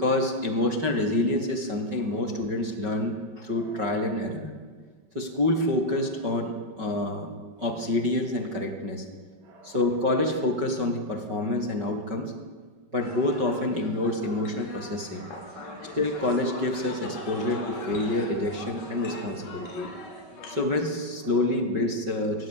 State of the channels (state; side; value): late; left; 5.3 ms